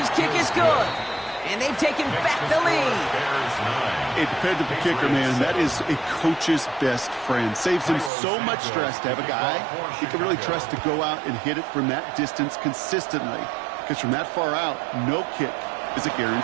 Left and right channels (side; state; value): left; drops out; at 8.1 s